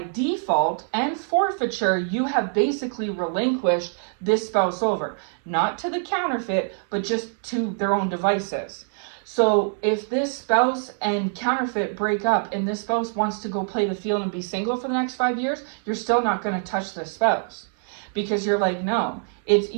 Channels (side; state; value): left; silent; 57 dB below the other